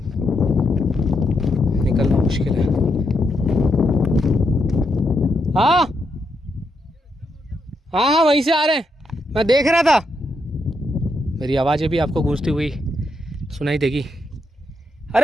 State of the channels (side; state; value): both; normal; correlation 0.81